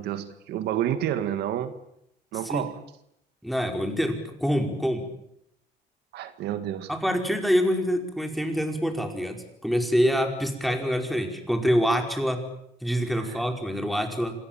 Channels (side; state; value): both; normal; correlation 0.79